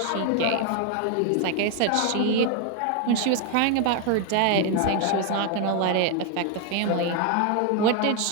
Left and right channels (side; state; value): both; different; correlation 0.01